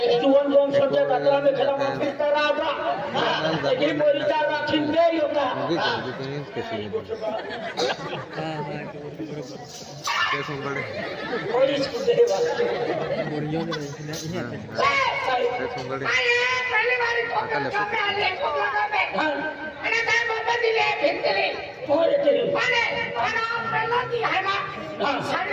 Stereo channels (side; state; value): both; identical; correlation 1.00